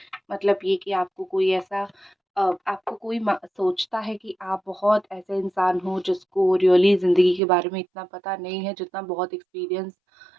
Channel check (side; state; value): left; drops out; at 7.4 s